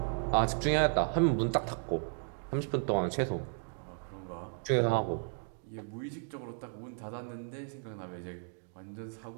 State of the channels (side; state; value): left; silent; 55 dB below the other